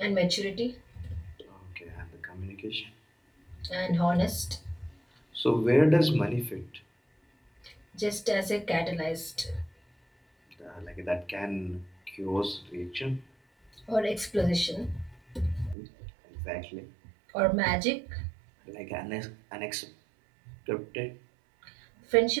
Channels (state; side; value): drops out; left; at 15.8 s